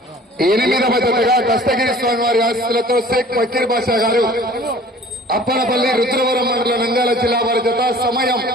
8వ జతగా దస్తగిరి స్వామి వారి ఆశీస్సులతో షేక్ ఫకీర్ బాషా గారు అప్పనపల్లి రుద్రవరం మండల నంద్యాల జిల్లా వారి జత. సమయం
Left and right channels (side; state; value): both; normal; correlation 0.48